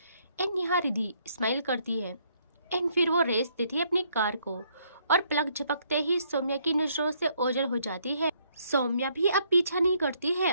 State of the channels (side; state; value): both; inverted; correlation -0.69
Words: एंड यहाँ रिधि स्माइल करती है एंड फिर वो रेस देती है अपनी कार को, और पलक झपकते ही सौम्या की नजरों से ओझल हो जाती है। सौम्या भी अब पीछा नहीं करती है